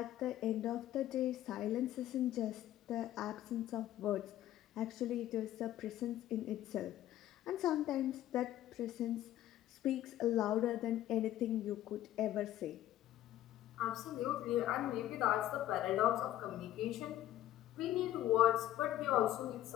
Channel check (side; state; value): right; quieter; 13.2 dB